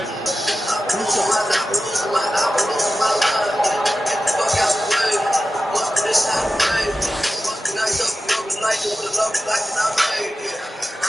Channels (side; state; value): both; normal; correlation 0.94